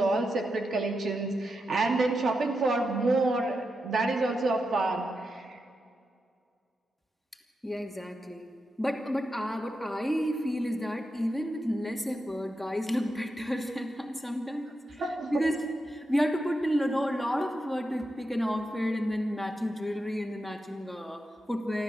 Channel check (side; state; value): both; normal; correlation 0.87